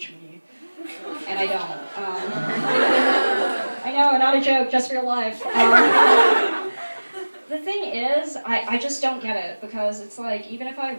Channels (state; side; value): inverted; both; correlation -1.00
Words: me. And I don't. I know, not a joke, just real life. The thing is, I just don't get it, because it's like, even if I